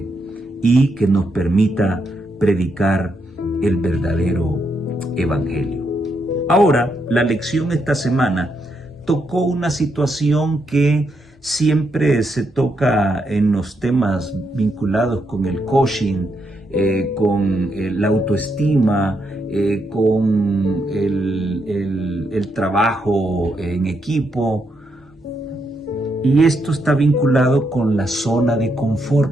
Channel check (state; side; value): normal; both; correlation 0.79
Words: y que nos permita predicar el verdadero evangelio. Ahora, la lección esta semana tocó una situación que siempre se toca en los temas vinculados con el coaching, con la autoestima, con el trabajo en equipo. Y esto está vinculado con la zona de